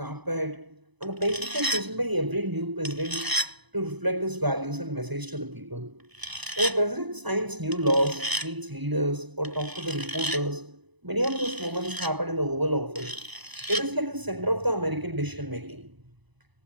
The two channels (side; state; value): left; late; 1.0 ms